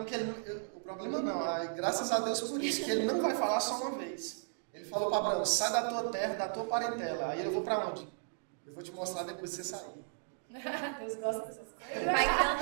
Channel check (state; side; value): silent; left; digital silence